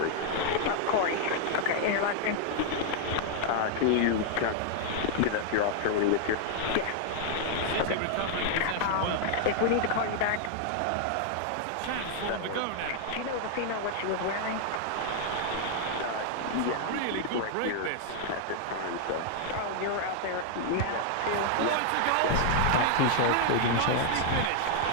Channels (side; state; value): both; different; correlation 0.00